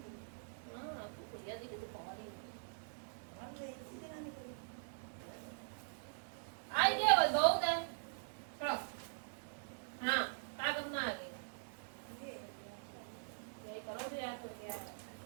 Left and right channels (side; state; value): left; silent; digital silence